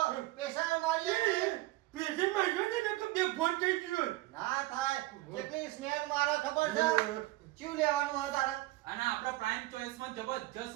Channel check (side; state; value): left; quieter; 18.8 dB